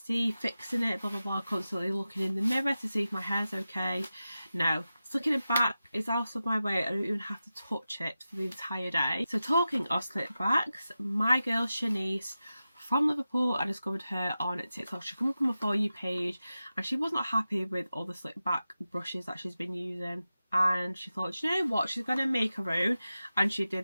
fixing it, blah blah blah, constantly looking in the mirror to see if my hair's okay. No. Slicking it back is out of my way. I don't even have to touch it for the entire day. So talking of slick backs, my girl Shanice from Liverpool, I discovered her on TikTok. She came up on my For You page and she was not happy with all the slick back brushes that she's been using, and she thought, you know what, she's gonna make her own, and she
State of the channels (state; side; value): inverted; both; correlation -0.93